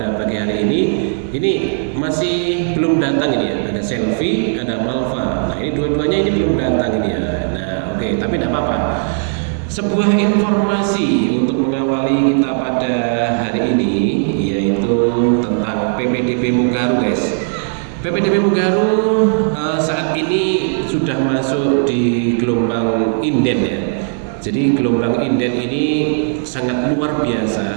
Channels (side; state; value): left; silent; 68 dB below the other